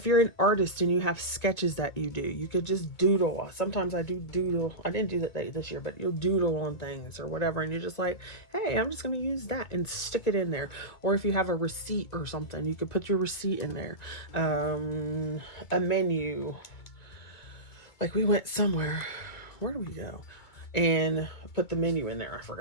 you're an artist and you have sketches that you do, you could just doodle. Sometimes I do doodle. I didn't do that this year, but you'll doodle on things or whatever, and you're just like, hey, I'm just going to use that and stick it in there. Or if you have a receipt or something, you could put your receipt in there. A menu. Like we went somewhere. Where do we go? And put the menu in there. I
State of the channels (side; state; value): right; late; 2.2 ms